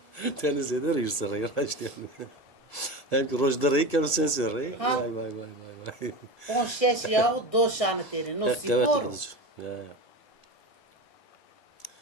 teni zeder hirsi rey raşt yani. Hem rojda rey kemer sensi rey. Vay. On şeş yahu doşanı teri no spor. Ya.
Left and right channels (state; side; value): late; right; 1.7 ms